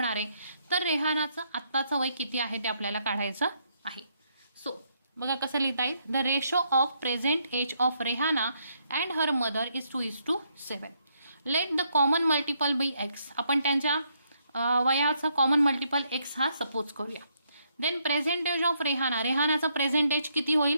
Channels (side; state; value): both; inverted; correlation -0.73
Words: आहे. तर रेहानाचं आत्ताचं वय किती आहे ते आपल्याला काढायचं आहे. सो बघा कसं लिहिता येईल, the ratio of present age of Rehana and her mother is 2:7. Let the common multiple be x, आपण त्यांच्या वयाचा कॉमन मल्टिपल एक्स हा सपोज करूया. Then present age of Rehana, रेहानाचं प्रेझेंट एज किती